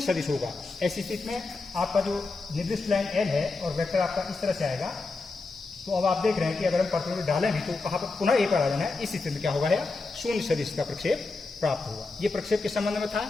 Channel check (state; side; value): quieter; right; 3.7 dB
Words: सदिश होगा। ऐसी स्थिति में आपका जो निर्दिष्ट लाइन एल है और वेक्टर आपका इस तरह से आएगा। तो अब आप देख रहे हैं कि अगर हम परपेंडिकुलर डालें भी तो कहाँ पर पुनः ए पर आ जाना है। इस स्थिति में क्या होगा, शून्य सदिश का प्रक्षेप प्राप्त होगा। ये प्रक्षेप के संबंध में था।